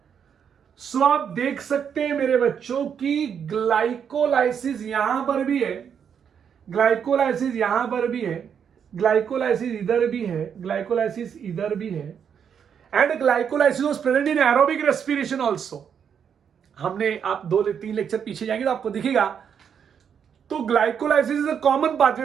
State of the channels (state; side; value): quieter; left; 7.7 dB